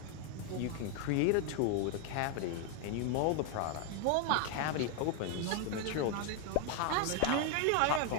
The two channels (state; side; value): different; both; correlation 0.00